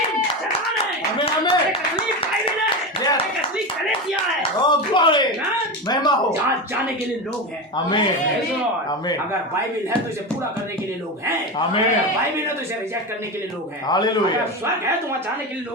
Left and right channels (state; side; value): normal; both; correlation 0.20